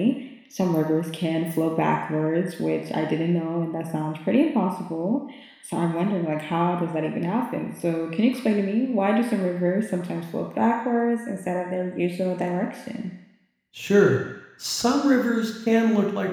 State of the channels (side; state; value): both; identical; correlation 1.00